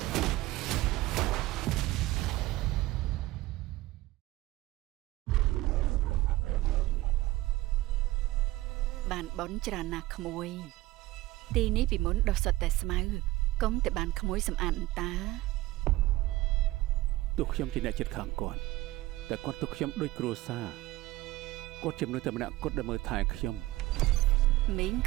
បានបនច្រើនណាស់ក្មួយទីនេះពីមុនដុះសុទ្ធតែស្មៅកុំតែបានក្មួយសម្អាតអន្តាទោះខ្ញុំជាអ្នកចិត្តខាងគាត់តែគាត់ទុកខ្ញុំដូចគ្រួសារគាត់ជាមនុស្សតែម្នាក់គត់ដែលមើលថែខ្ញុំមីង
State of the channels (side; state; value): left; quieter; 18.2 dB